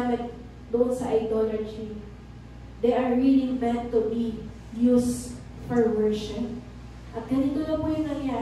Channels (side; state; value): both; identical; correlation 1.00